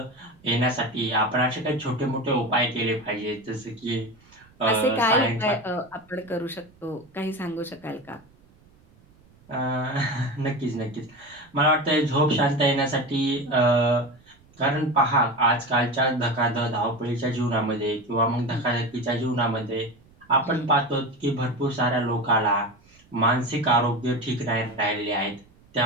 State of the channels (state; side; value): noise; right; rumble, 29 dB below the sound